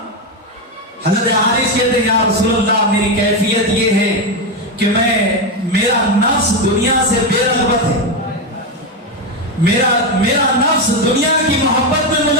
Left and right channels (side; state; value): both; normal; correlation 0.10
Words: حضرت حارث کہتے ہیں یا رسول اللہ میری کیفیت یہ ہے کہ میرا نفس دنیا سے بے رغبت ہے, میرا نفس دنیا کی محبت میں